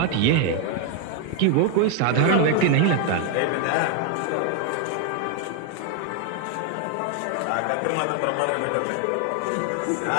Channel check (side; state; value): both; different; correlation 0.01